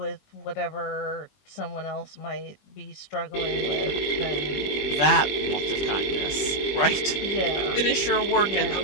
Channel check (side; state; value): right; late; 20 ms